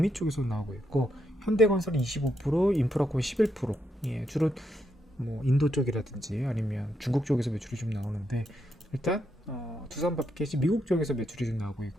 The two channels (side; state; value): both; normal; correlation 0.80